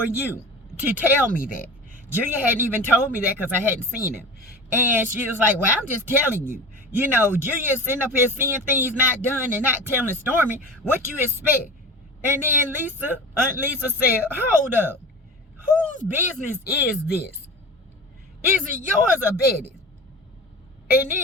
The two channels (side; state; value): both; normal; correlation 0.33